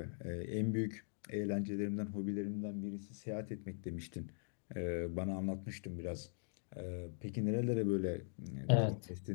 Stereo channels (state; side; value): silent; right; digital silence